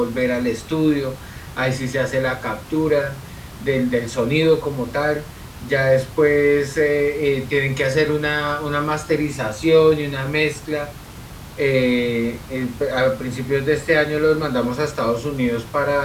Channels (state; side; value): identical; both; correlation 1.00